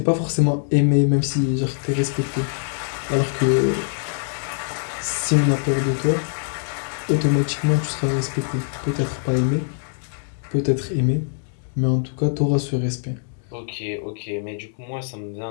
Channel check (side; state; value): right; silent; digital silence